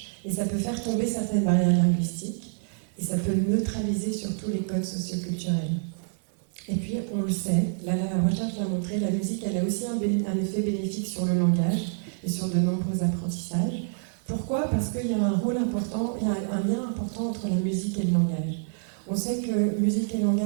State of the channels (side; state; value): left; silent; 60 dB below the other